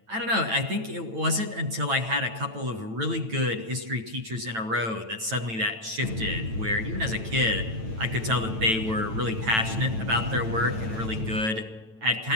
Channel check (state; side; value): late; left; 9.0 ms